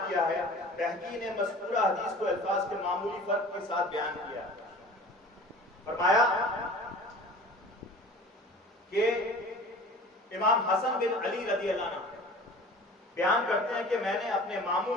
کیا ہے، بہقی نے مذکورہ حدیث کو الفاظ کے معمولی فرق کے ساتھ بیان کیا ہے. فرمایا کہ امام حسن بن علی رضی اللہ عنہ بیان کرتے ہیں کہ میں نے اپنے ماموں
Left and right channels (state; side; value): normal; both; correlation 0.42